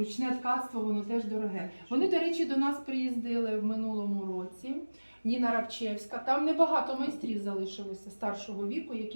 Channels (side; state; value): both; inverted; correlation -1.00